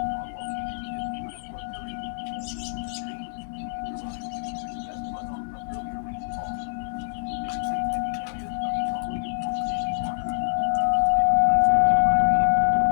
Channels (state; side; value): silent; right; digital silence